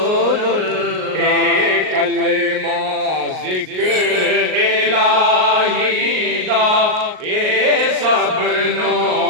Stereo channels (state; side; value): late; left; 38 ms